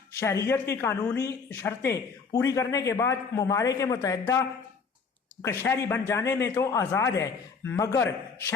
شہریت کی قانونی شرطیں پوری کرنے کے بعد ممالک متحدہ کا شہری بن جانے میں تو آزاد ہے، مگر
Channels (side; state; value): right; quieter; 5.2 dB